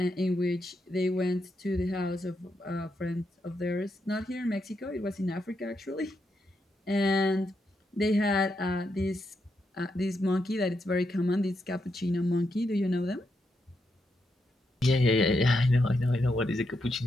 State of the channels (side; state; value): both; normal; correlation 0.82